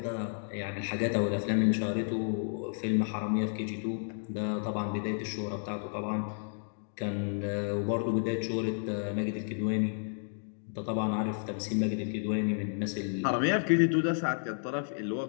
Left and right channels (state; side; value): silent; right; digital silence